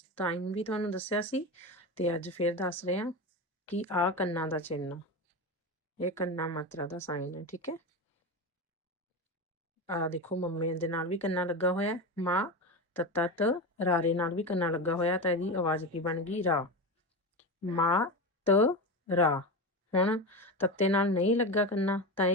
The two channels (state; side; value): normal; both; correlation 0.21